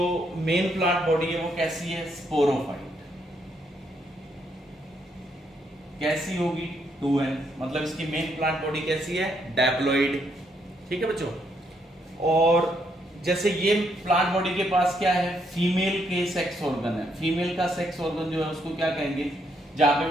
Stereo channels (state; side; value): normal; both; correlation 0.74